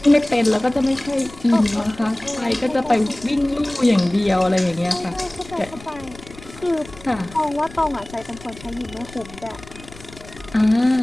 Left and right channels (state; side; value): noise; left; rumble, 19 dB below the sound